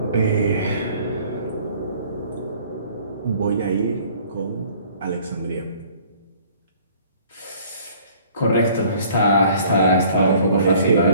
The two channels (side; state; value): both; inverted; correlation -0.55